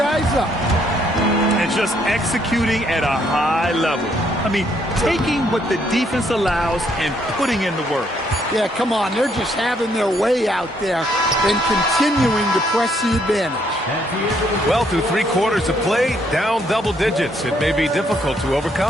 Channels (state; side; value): normal; both; correlation 0.70